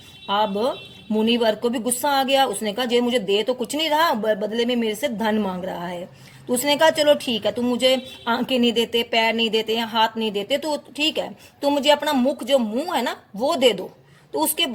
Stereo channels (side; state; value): both; identical; correlation 1.00